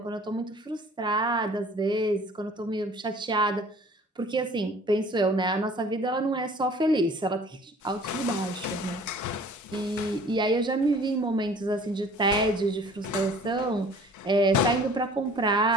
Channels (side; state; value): both; normal; correlation 0.50